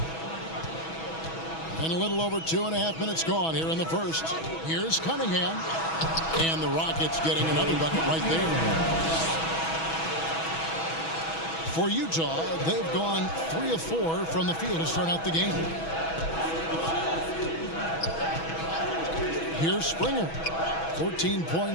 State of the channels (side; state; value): right; late; 6.2 ms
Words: And a little over 2.5 minutes gone here in the first. Here's Cunningham. And the Rockets getting another bucket right there. For Utah, they've gone 3 of 4 from the field to start out the game. Here's Springer. 14